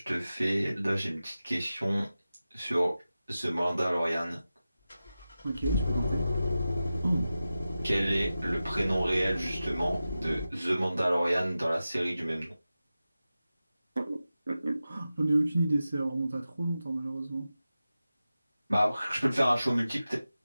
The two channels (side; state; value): both; inverted; correlation -0.94